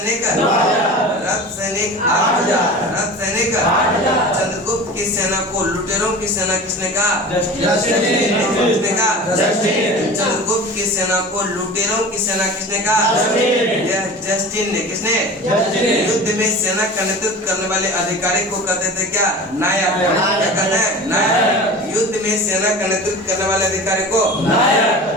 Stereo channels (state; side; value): normal; both; correlation 0.35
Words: रथ सैनिक 8,000। रथ सैनिक 8,000। चंद्रगुप्त की सेना को लुटेरों की सेना किसने कहा? किसने कहा? चंद्रगुप्त की सेना को लुटेरों की सेना किसने कहा? यह जस्टिन ने। किसने? युद्ध में सेना का नेतृत्व करने वाले अधिकारी को कहते थे क्या? नायक। क्या कहते हैं? नायक। युद्ध में सेना का नेतृत्व करने वाले अधिकारी को